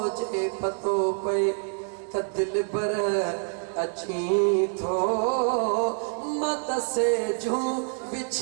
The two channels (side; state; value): left; silent; 60 dB below the other